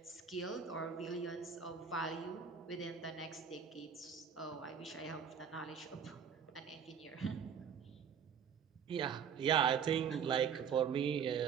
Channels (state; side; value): quieter; left; 7.2 dB